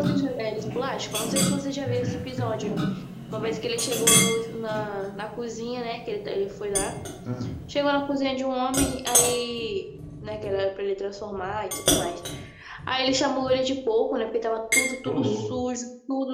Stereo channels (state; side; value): identical; both; correlation 1.00